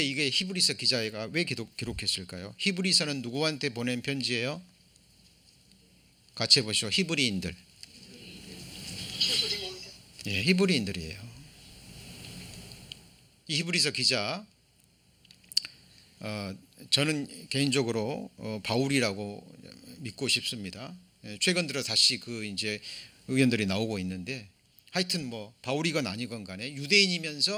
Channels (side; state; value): both; identical; correlation 1.00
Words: 이게 히브리서 기자가 왜 기록했을까요? 히브리서는 누구한테 보낸 편지예요? 같이 해보시죠. 히브리인들. 예, 히브리인들이에요. 이 히브리서 기자, 저는 개인적으로 바울이라고 믿고 싶습니다. 최근 들어 다시 그 이제 의견들이 나오고 있는데, 하여튼 뭐 바울이건 아니건 간에